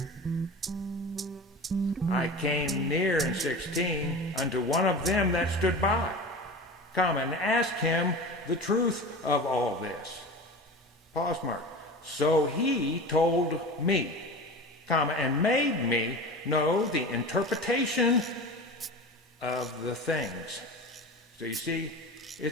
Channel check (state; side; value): normal; both; correlation 0.32